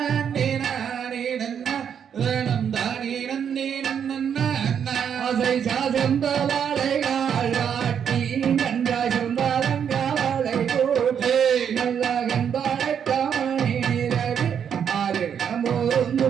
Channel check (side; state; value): left; quieter; 8.0 dB